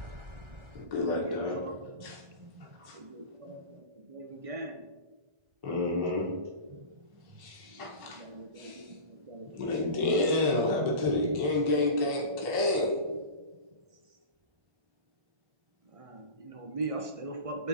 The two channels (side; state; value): left; late; 1.1 ms